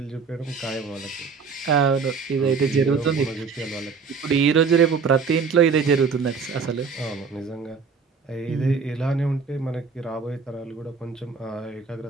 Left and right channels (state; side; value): quieter; left; 5.3 dB